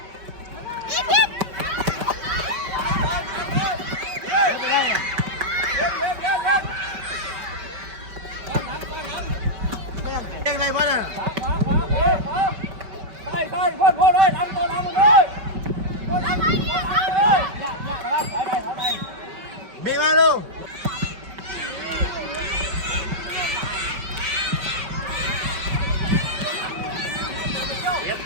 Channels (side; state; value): left; late; 5.2 ms